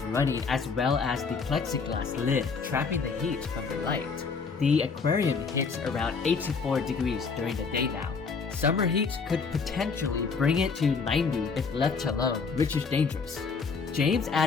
running, as well as the plexiglass lid trapping the heat from the light. The aquarium hits around 84 degrees during the day now. Summer heat could potentially bring it to 90 if left alone, which is dangerous. James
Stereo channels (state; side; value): quieter; right; 5.1 dB